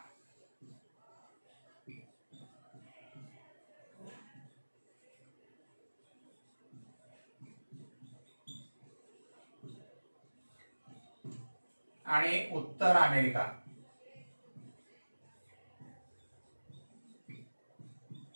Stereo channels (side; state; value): both; inverted; correlation -1.00